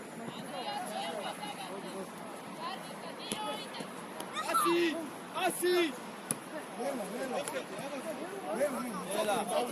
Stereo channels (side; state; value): both; identical; correlation 1.00